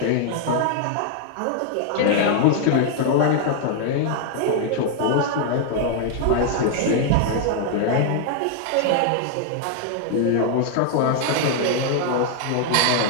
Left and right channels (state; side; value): different; both; correlation 0.00